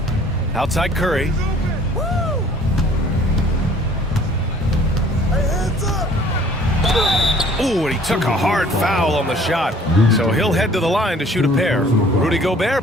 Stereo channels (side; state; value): both; normal; correlation 0.55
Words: Outside Curry. Ooh, and he took a hard foul on the shot. So he'll head to the line to shoot a pair. Rudy